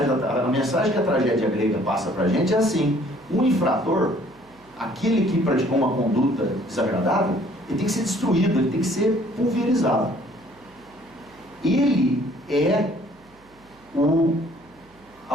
que a tragédia grega passa para a gente é assim: o infrator, aquele que praticou uma conduta desagradável, ele tem que ser destruído, ele tem que ser pulverizado. Ele é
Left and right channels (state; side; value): noise; right; hum, 29 dB below the sound